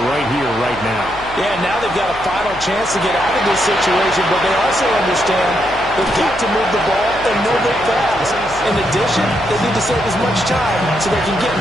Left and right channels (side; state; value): left; noise; hum, 17 dB below the sound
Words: right here, right now. Yeah, now they've got a final chance to get out of this situation, but they also understand they've got to move the ball and move it fast. In addition, they need to save as much time so they can get